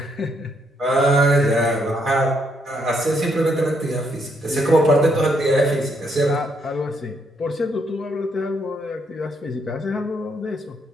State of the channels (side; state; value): both; normal; correlation 0.74